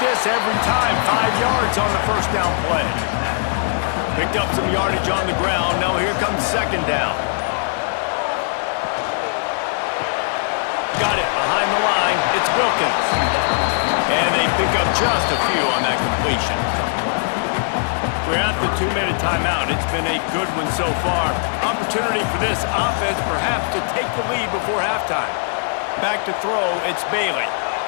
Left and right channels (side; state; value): right; silent; 66 dB below the other